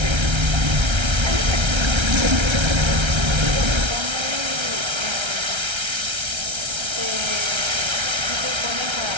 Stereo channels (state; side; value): late; left; 1.3 ms